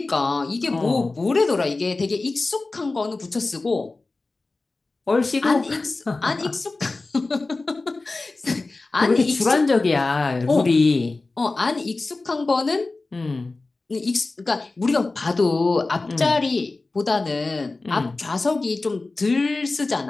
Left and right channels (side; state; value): right; quieter; 3.4 dB